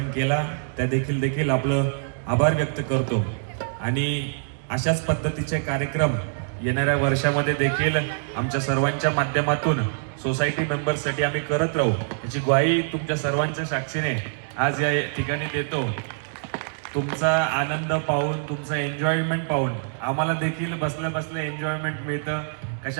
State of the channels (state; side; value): silent; left; digital silence